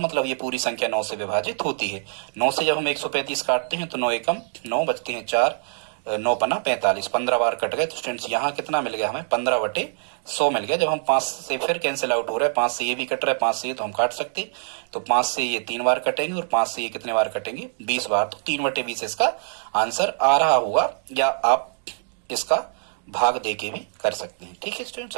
मतलब ये पूरी संख्या 9 से विभाजित होती है। 9 से जब हम 135 काटते हैं तो 9 एकम 9 बचते हैं 4, 9 पन्ना 45, 15 बार कट गए। तो स्टूडेंट्स यहाँ कितना मिल गया हमें, 15 बटे 100 मिल गया। जब हम 5 से फिर कैंसिल आउट हो रहा है, 5 से ये भी कट रहा है, 5 से ये तो हम काट सकते, तो 5 से ये 3 बार कटेंगे और 5 से ये कितने बार कटेंगे, 20 बार, तो 3 बटे 20 इसका आंसर आ रहा होगा, या आप इसका भाग दे के भी कर सकते हैं। ठीक है स्टूडेंट्स,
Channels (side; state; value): left; silent; digital silence